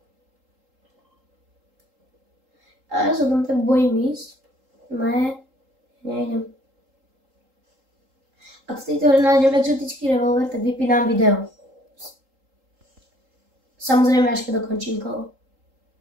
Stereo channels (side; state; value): left; late; 3.8 ms